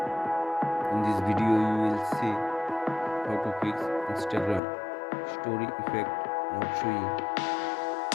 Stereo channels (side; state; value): right; drops out; at 4.6 s